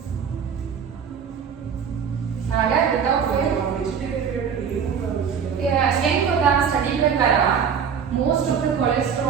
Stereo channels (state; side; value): quieter; left; 7.1 dB